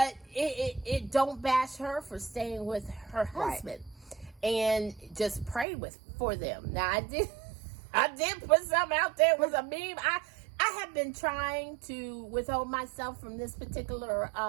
it don't bash her for staying with her husband, and just pray for them. Now, I did put something out there. It was a meme. I have been trying to withhold myself from this particular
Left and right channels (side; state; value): left; drops out; at 5.7 s